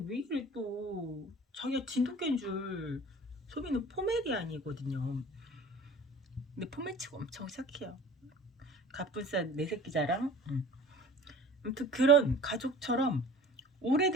이래 또. 자기가 진돗개인 줄. 소미는 포메리안이거든요. 근데 포메치가 엄청 착해요. 갑분싸 내 새끼 자랑. 아무튼 그런 가족처럼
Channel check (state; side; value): normal; both; correlation 0.43